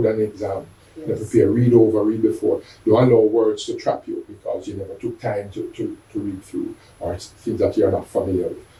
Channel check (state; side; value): identical; both; correlation 1.00